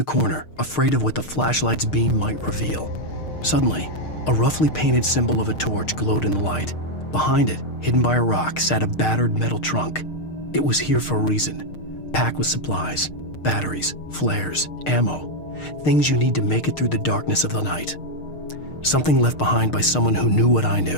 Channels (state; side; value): late; right; 6.5 ms